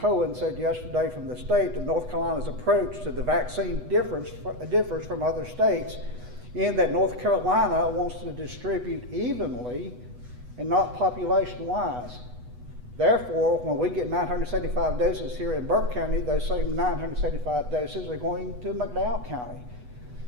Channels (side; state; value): left; late; 8.1 ms